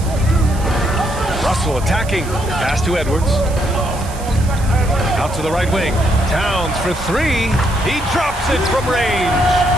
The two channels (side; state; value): right; noise; hiss, 16 dB below the sound